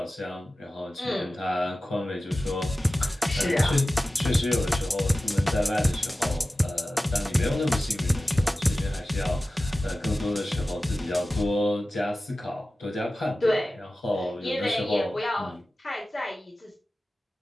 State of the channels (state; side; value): normal; both; correlation 0.95